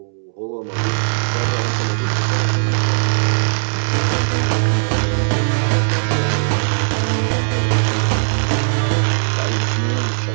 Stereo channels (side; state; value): left; silent; 67 dB below the other